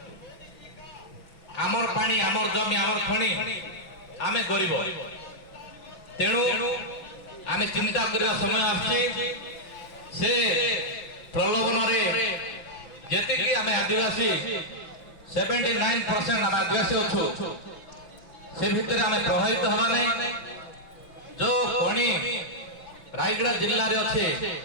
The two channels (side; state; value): right; late; 5.9 ms